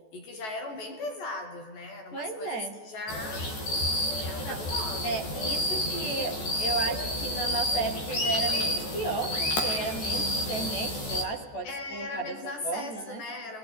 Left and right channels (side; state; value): right; late; 14 ms